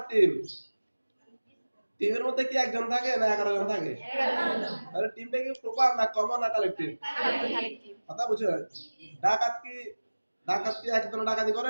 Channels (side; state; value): both; inverted; correlation -1.00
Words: টিম, টিমের মধ্যে কি একজন থাকে না 11 জন থাকে? তাহলে টিমটা কি প্রপার না কমন না কালেকটিভ? কথা বুঝছো? ডাকাত কি ডাকাত কি একজন ডাকাতি